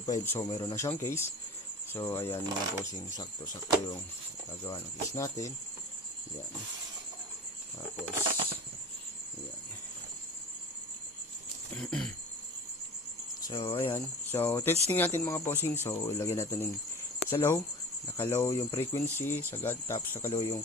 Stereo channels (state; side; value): normal; both; correlation 0.38